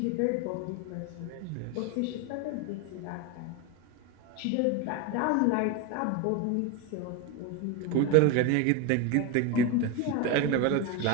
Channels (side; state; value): both; different; correlation 0.03